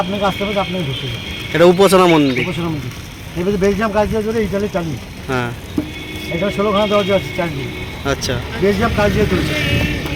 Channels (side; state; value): both; identical; correlation 1.00